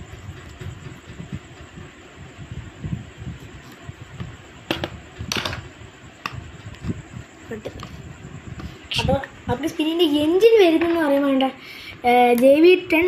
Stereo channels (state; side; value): identical; both; correlation 1.00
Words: അപ്പോൾ സ്പിന്നിൻ്റെ എൻജിൻ വരുന്നതെന്ന് പറയാൻ വേണ്ട JV10